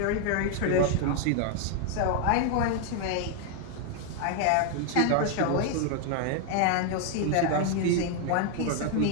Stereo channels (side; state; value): both; different; correlation 0.00